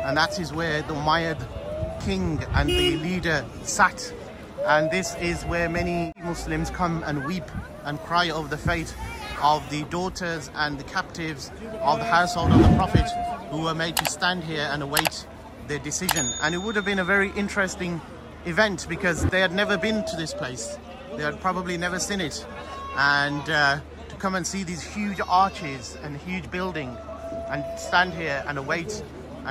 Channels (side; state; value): both; identical; correlation 1.00